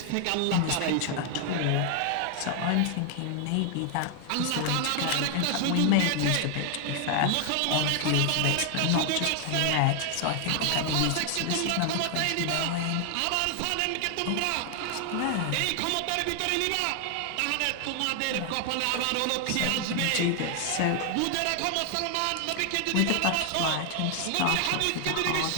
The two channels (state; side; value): different; both; correlation 0.00